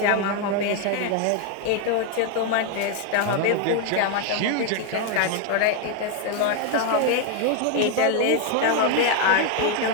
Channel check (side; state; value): both; different; correlation 0.01